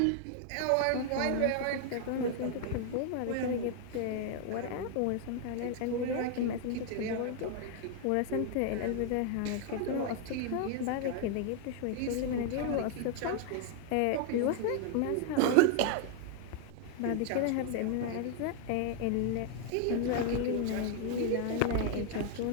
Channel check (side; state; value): both; different; correlation 0.00